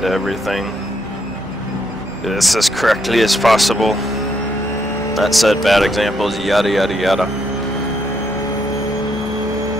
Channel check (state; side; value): normal; both; correlation 0.75